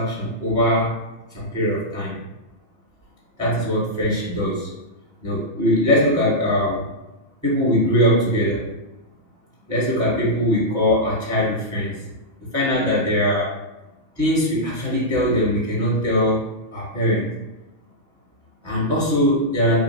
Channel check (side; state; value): left; late; 6.1 ms